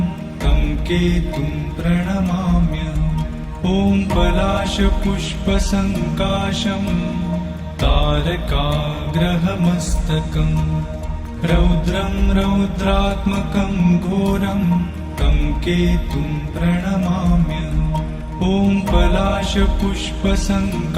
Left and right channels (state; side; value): identical; both; correlation 1.00